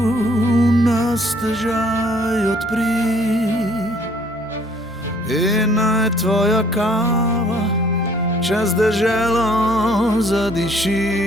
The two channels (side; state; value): both; normal; correlation 0.60